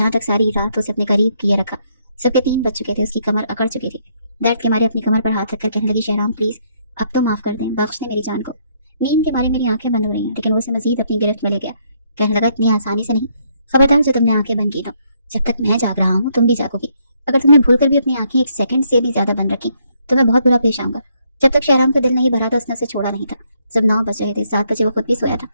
तक सारी रात उसे अपने करीब किए रखा। सबके 3 बज चुके थे। उसकी कमर अकड़ चुकी थी। दर्द के मारे अपनी कमर पर हाथ रखकर कहने लगी, शहराम प्लीज अब तो माफ कर दें, बख्श दें मेरी जान को। नींद के मारे मेरी आंखें बंद हो रही हैं। लेकिन वो उसे मजीद अपनी गिरफ्त में ले गया। कहने लगा, इतनी आसानी से नहीं, खबरदार जो तुमने आंखें बंद की तो जब तक मैं जाग रहा हूँ तुम भी जागोगी। अगर तुमने भूलकर भी अपनी आंखें 1 सेकंड से भी ज्यादा बंद रखी तो मैं बहुत बुरा पेश आऊंगा। जब तक शहराम का दिल नहीं भरा था उसने उसे छोड़ा नहीं था। जब 9 बज रहे थे, 7 बजे वो खुद भी सोया था,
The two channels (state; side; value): inverted; both; correlation -0.72